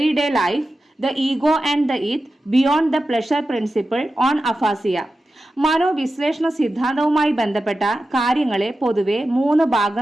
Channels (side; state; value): both; normal; correlation 0.92